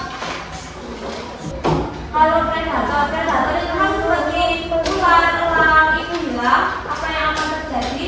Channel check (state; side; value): identical; both; correlation 1.00